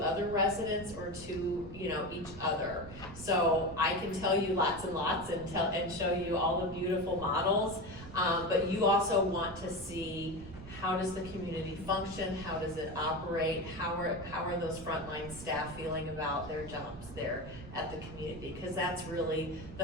other residents or to each other. So I can tell you lots and lots and show you all the beautiful models, but you also want to see, how does the community function? How does it operate? How are those frontline staff feeling about their jobs there at the community? Because that's really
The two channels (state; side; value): noise; right; rumble, 14 dB below the sound